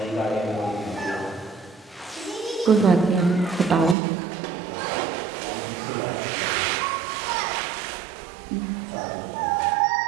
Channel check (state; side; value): drops out; left; at 4.0 s